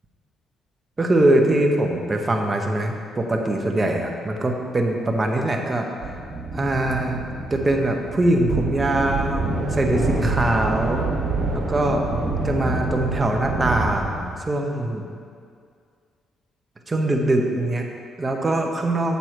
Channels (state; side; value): normal; both; correlation 0.80